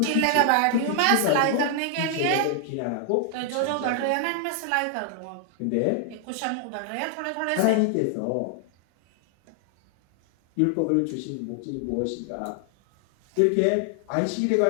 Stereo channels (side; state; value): both; different; correlation 0.00